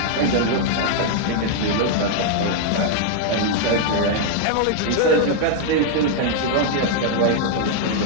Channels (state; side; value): different; both; correlation 0.00